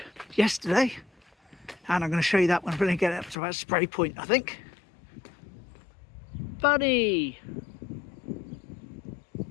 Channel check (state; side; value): drops out; right; at 3.4 s